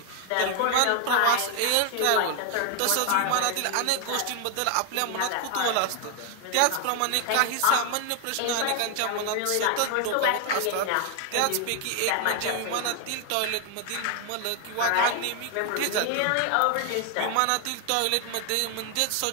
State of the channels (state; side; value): different; both; correlation 0.00